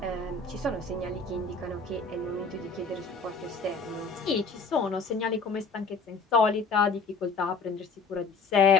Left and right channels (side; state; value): right; quieter; 4.2 dB